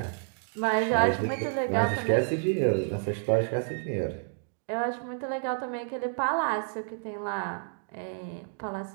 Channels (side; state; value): left; silent; digital silence